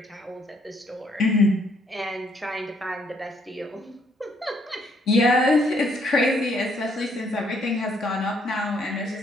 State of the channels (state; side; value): normal; both; correlation 0.69